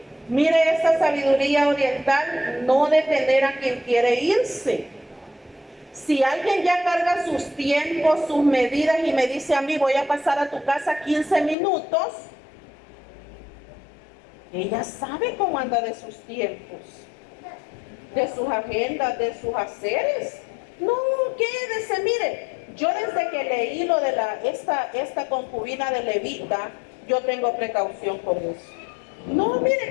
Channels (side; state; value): right; drops out; at 11.6 s